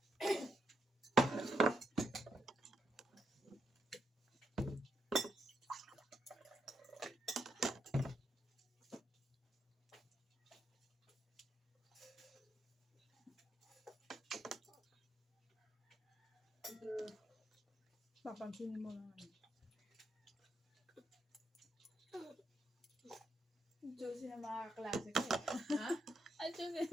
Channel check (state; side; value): normal; both; correlation 0.80